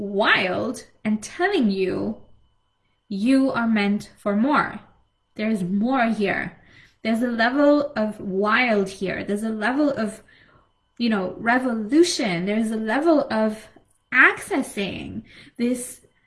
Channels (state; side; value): identical; both; correlation 1.00